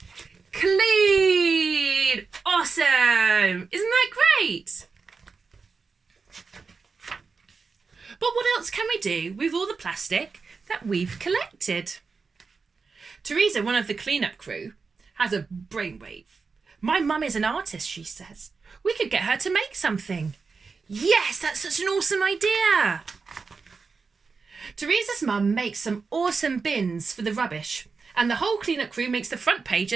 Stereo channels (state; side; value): quieter; left; 4.8 dB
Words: clean. Awesome. Isn't that great? But what else can we do with all the plastic that we've collected? Teresa, one of the clean-up crew, has a brainwave. My mum is an artist, she says. We could get her to make something. Yes, that's such an awesome idea. Teresa's mum makes some awesome bins for the rubbish, and the whole clean-up crew makes the front